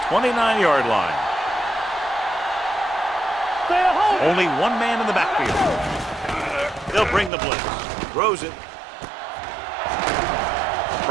29-yard line. Only one man in the backfield. They'll bring the blitz. Throws it.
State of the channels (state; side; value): drops out; left; at 7.3 s